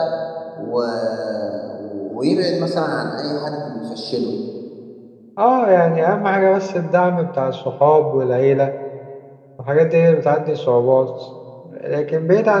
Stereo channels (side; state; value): both; identical; correlation 1.00